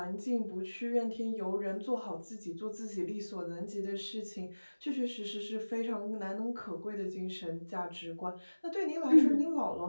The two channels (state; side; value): inverted; both; correlation -1.00